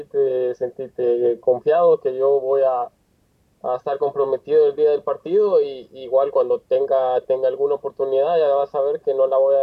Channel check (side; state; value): both; identical; correlation 1.00